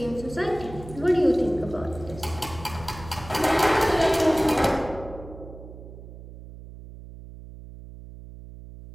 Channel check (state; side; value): noise; right; hum, 15 dB below the sound